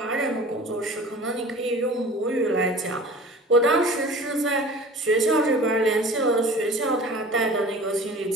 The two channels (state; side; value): normal; both; correlation 0.42